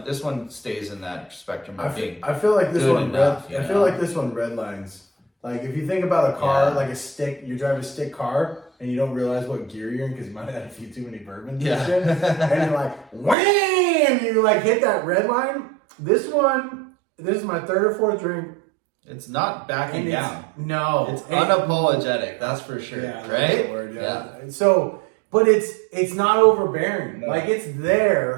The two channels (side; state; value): left; drops out; at 13.4 s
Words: stays in that spectrum of being. I feel like this good one. enough, I feel like this one redlines. Like, if you think about a car, like a stick, you drive a stick car and you don't realize what gear you're in because you might have had a few too many bourbons and shit, and you're like, wham! You like hit that red line. This is my third or fourth drink. It's not backing down. No, it's unapologetic. That's for sure. Yeah, right? The word, yeah. So, but it's not overbearing. No. Like, it's